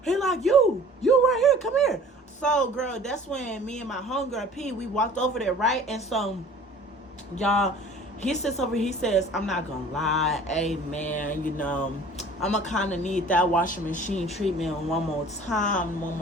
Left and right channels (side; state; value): both; normal; correlation 0.47